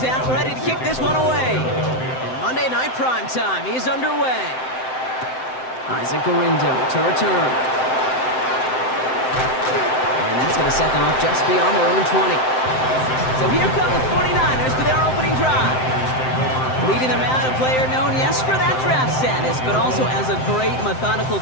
out, ready to kick this one away. And Monday Night Primetime is underway. Isaac Gorindo to return. And that's going to set them up just beyond their own 20. So here come the 49ers for their opening drive. Leading them out, a player known, yes, for that draft status, but also as a great methodical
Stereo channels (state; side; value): late; right; 7.8 ms